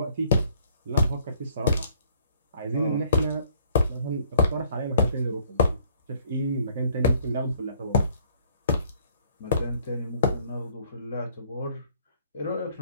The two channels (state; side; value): inverted; both; correlation -0.62